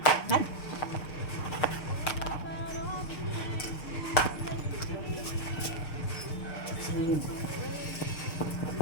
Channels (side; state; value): right; late; 6.6 ms